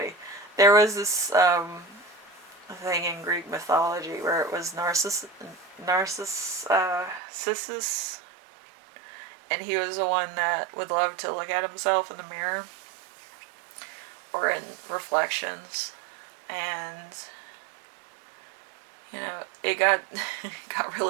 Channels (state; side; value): drops out; left; at 7.2 s